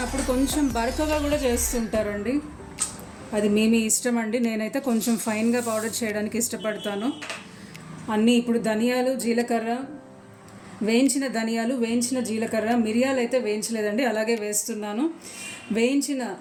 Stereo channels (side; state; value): both; identical; correlation 1.00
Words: కొంచెం బరకగా కూడా చేస్తుంటారండి. అది మీ ఇష్టం అండి. నేనైతే కొంచెం ఫైన్గా పౌడర్ చేయడానికి ఇష్టపడతాను. అన్నీ ఇప్పుడు ధనియాలు, జీలకర్ర, వేయించిన ధనియాలు, వేయించిన జీలకర్ర, మిరియాలు అయితే వేయించలేదండి, అలాగే వేస్తున్నాను. వేయించిన